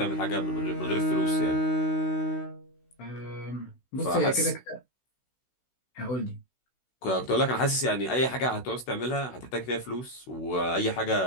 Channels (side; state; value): right; late; 16 ms